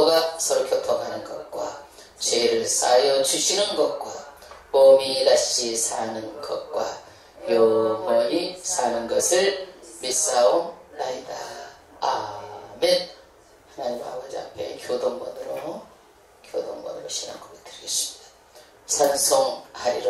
서로 교통하는 것과 죄를 사하여 주시는 것과 몸이 다시 사는 것과 영원히 사는 것을 믿사옵나이다. 아멘. 하나님 아버지 앞에 교동번으로 신앙 고백 드리겠습니다.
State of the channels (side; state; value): both; identical; correlation 1.00